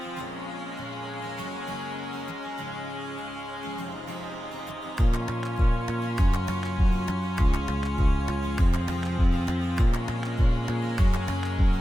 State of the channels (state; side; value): normal; both; correlation 0.92